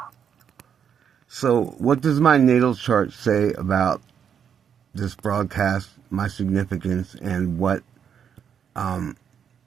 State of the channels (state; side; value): quieter; left; 7.9 dB